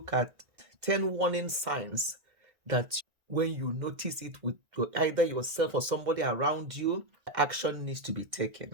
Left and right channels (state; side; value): late; left; 1.9 ms